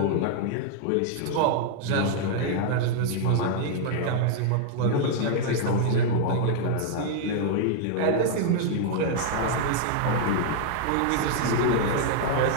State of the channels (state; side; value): different; both; correlation -0.01